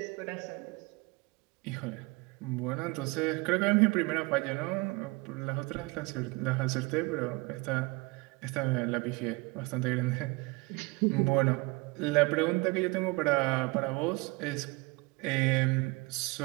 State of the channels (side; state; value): left; quieter; 25.4 dB